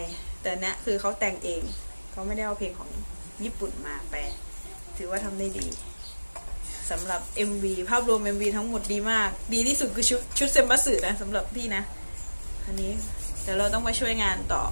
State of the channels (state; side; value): inverted; both; correlation -1.00